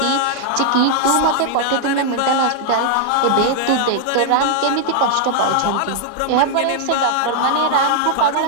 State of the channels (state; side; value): different; both; correlation -0.01